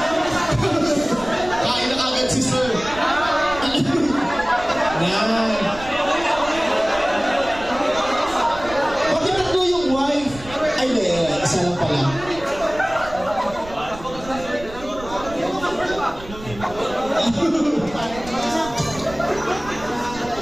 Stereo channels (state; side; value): noise; right; rumble, 15 dB below the sound